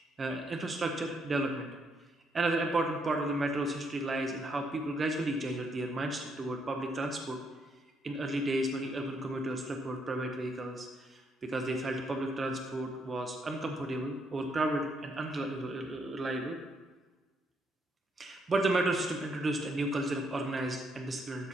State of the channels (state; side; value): normal; both; correlation 0.74